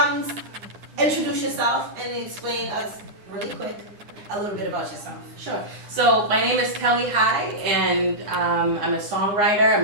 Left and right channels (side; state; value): left; late; 9.8 ms